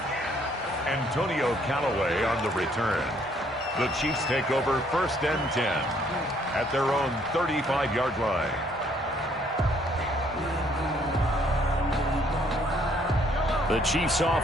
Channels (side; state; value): both; normal; correlation 0.65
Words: Antonio Callaway on the return. The Chiefs take over 1st and 10 at their own 35-yard line. The Chiefs